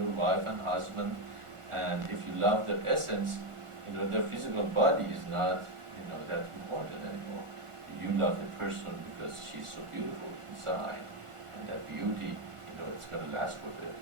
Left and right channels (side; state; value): left; late; 1.4 ms